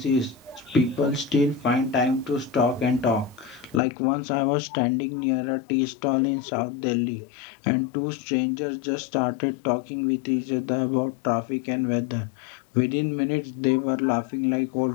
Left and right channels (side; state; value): right; drops out; at 3.8 s